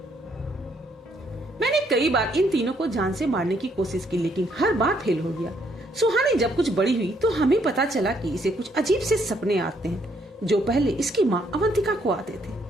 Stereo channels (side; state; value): both; normal; correlation 0.70